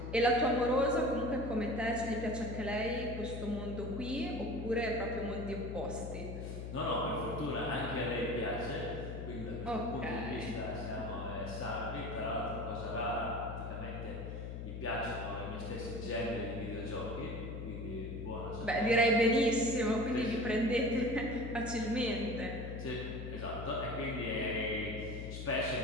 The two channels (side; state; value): left; noise; hum, 6 dB below the sound